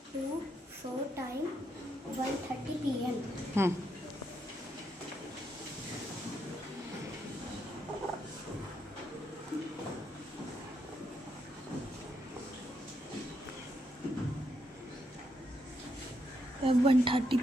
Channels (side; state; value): both; normal; correlation 0.79